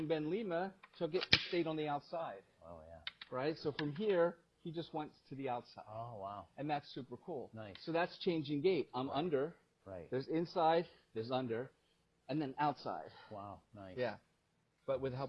Ben Lima took it and stayed on the outside. Oh, yeah. Right? So from here, he just went to the outside. Oh, wow. And that's super cool. Nice. So that's changing gait. I'm under. Right. There's inside, there's under, and then outside. Wow. Nice. Yeah. But with the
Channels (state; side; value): identical; both; correlation 1.00